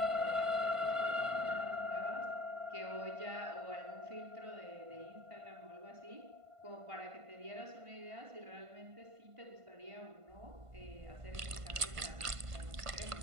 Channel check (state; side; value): late; left; 1.5 ms